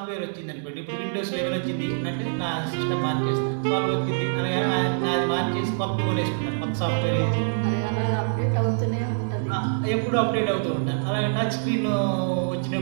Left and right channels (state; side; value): silent; left; digital silence